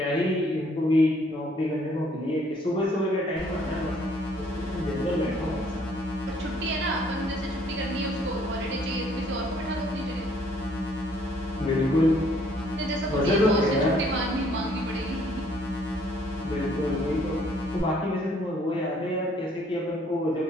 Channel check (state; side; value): normal; both; correlation 0.63